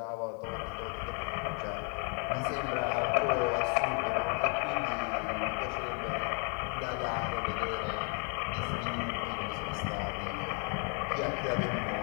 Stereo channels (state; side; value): quieter; right; 37.9 dB